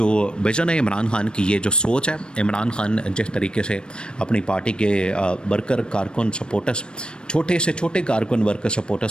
विज़न है, इमरान खान की ये जो सोच है, इमरान खान जिस तरीके से अपनी पार्टी के वर्कर, कारकुन, सपोर्टर्स, छोटे से छोटे कारकुन, वर्कर,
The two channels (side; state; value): right; late; 0.053 ms